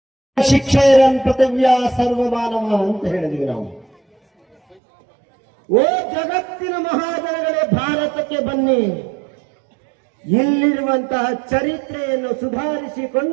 ಶಿಕ್ಷೆಯರನ್ ಪೃಥಿವ್ಯ ಸರ್ವಮಾನವ ಅಂತ ಹೇಳಿದ್ವಿ ನಾವು. ಓ ಜಗತ್ತಿನ ಮಹಾಜನಗಳೇ, ಭಾರತಕ್ಕೆ ಬನ್ನಿ. ಇಲ್ಲಿರುವಂತಹ ಚರಿತ್ರೆಯನ್ನು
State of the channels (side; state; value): left; drops out; at 4.8 s